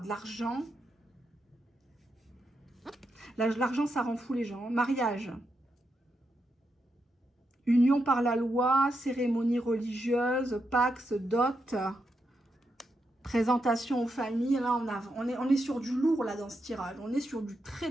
l'argent. L'argent, ça rend fou les gens. Mariage. Union par la loi, cérémonie religieuse, pax, dot. Présentation aux familles, là on est sur du lourd là dans ce tirage. On est sur du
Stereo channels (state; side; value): normal; both; correlation 0.84